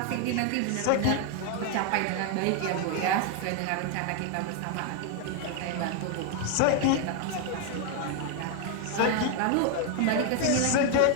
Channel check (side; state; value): both; different; correlation 0.01